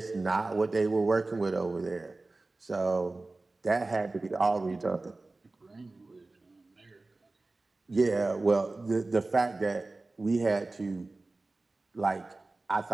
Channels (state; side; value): quieter; left; 3.2 dB